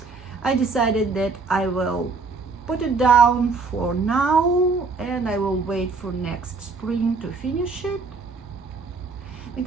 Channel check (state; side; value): quieter; left; 4.3 dB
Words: I decided that I will put it down for now and I will wait for next spring to finish it,